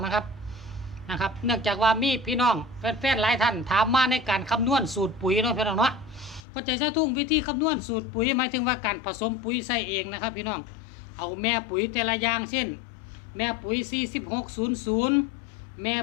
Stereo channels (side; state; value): right; drops out; at 6.4 s